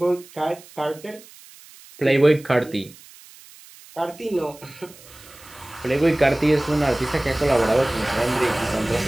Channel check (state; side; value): noise; right; hiss, 22 dB below the sound